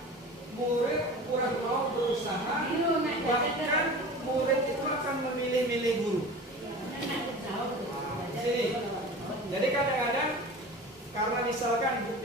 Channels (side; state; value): both; normal; correlation 0.36